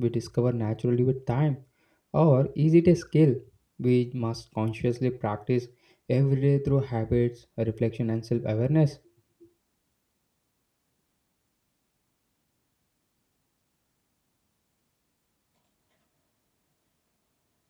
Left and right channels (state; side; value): identical; both; correlation 1.00